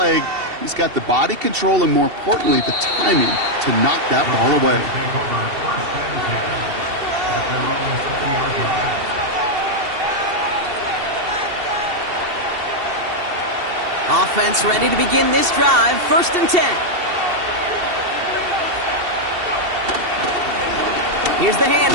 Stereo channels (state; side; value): late; left; 2.7 ms